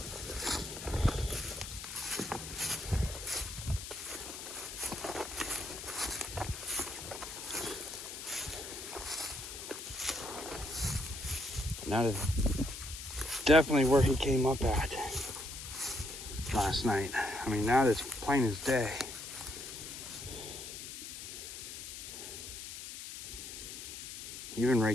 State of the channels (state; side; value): noise; left; hiss, 9 dB below the sound